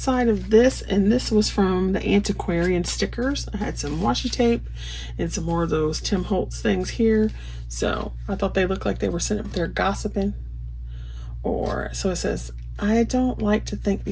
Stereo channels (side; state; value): both; identical; correlation 1.00